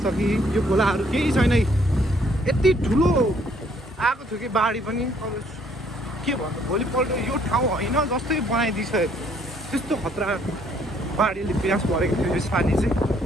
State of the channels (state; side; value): normal; both; correlation 0.65